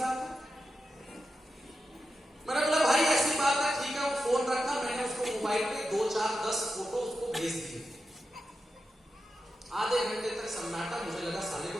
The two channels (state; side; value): normal; both; correlation 0.89